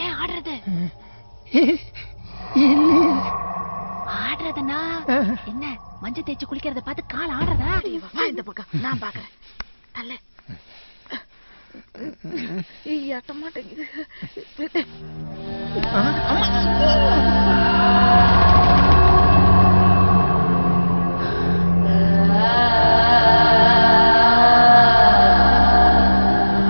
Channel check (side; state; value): both; inverted; correlation -1.00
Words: ஏன் ஆடுறது? ஆடுறதுனா என்ன? மஞ்சள் தேய்ச்சி குளிக்கிறத பார்த்து கால் ஆடுறதா? இந்த பக்கம் நான் பாக்குறேன். தள்ள ஏட்ட மாட்டேங்குது.